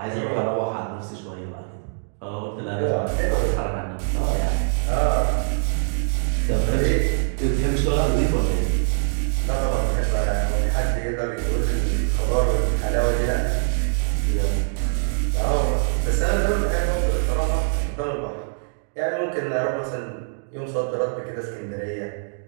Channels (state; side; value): silent; left; digital silence